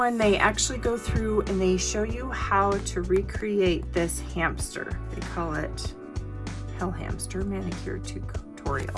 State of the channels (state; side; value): identical; both; correlation 1.00